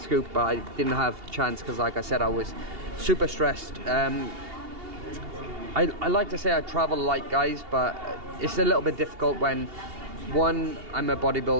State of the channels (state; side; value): late; left; 2.8 ms